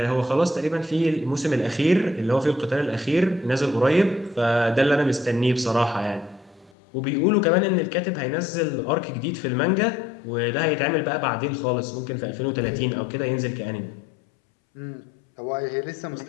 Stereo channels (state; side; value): drops out; right; at 6.7 s